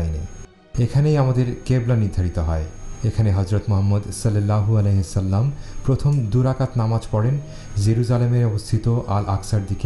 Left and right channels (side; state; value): both; identical; correlation 1.00